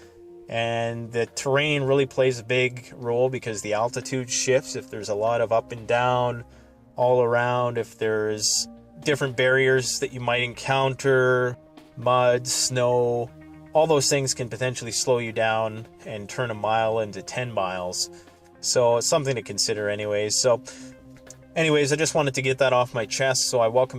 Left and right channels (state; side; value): identical; both; correlation 1.00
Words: And the terrain really plays a big role because the altitude shifts. If there's a lot of up and down all around, if there's different barriers that you might encounter, mud, snow, all those things can potentially slow you down and turn a mile into 10 miles. So it's something to consider anyways. So anyways, I just wanted to get that off my chest. So I